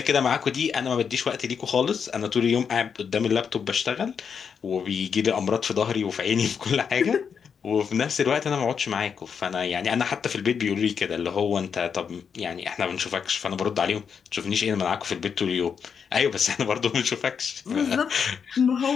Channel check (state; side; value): quieter; right; 6.7 dB